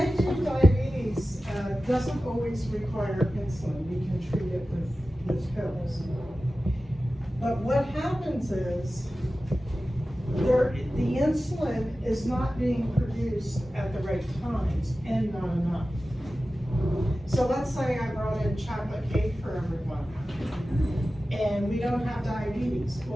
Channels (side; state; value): both; normal; correlation 0.95